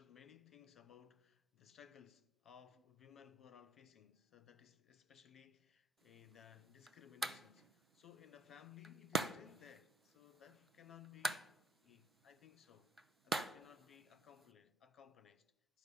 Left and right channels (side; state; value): both; normal; correlation 0.73